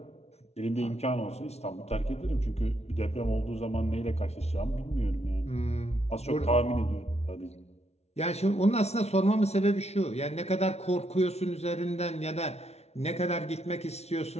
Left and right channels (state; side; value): late; right; 0.31 ms